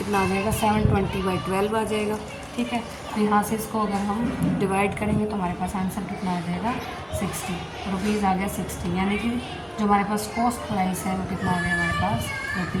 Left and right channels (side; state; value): both; identical; correlation 1.00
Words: आ जाएगा 720/12 आ जाएगा, ठीक है। तो यहाँ से इसको अगर हम डिवाइड करेंगे तो हमारे पास आंसर कितना आ जाएगा 60 रुपीज़ आ गया 60, यानी कि जो हमारे पास कॉस्ट प्राइस है वो कितना आ गया हमारे पास